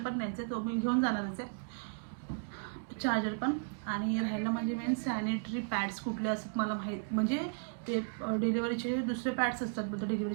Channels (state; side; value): silent; left; digital silence